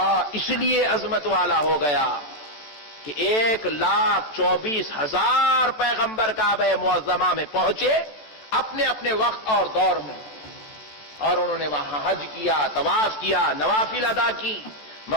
اس لیے عظمت والا ہو گیا کہ 1,24,000 پیغمبر کعبہ معظمہ میں پہنچے اپنے اپنے وقت اور دور میں، اور انہوں نے وہاں حج کیا، طواف کیا، نوافل ادا کی،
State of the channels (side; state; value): right; late; 14 ms